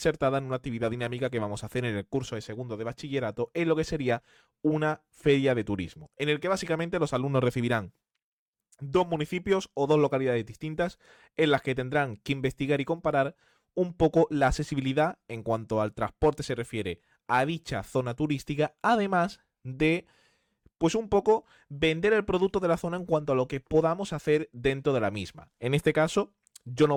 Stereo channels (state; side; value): identical; both; correlation 1.00